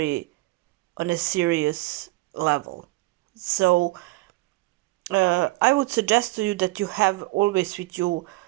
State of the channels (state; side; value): quieter; left; 21.1 dB